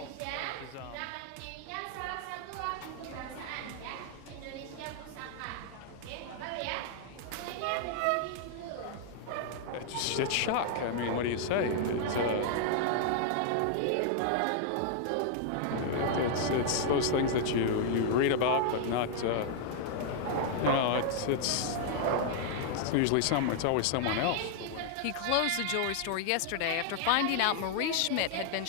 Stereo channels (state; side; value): different; both; correlation -0.01